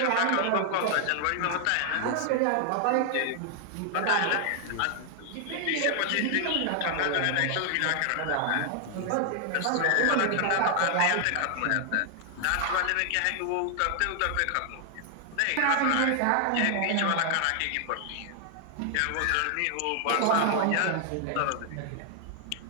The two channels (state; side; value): different; both; correlation 0.00